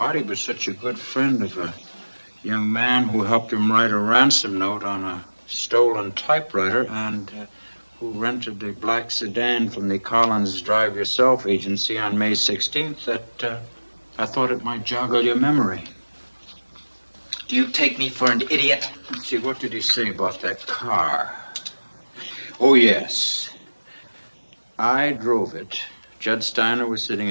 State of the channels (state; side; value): inverted; both; correlation -1.00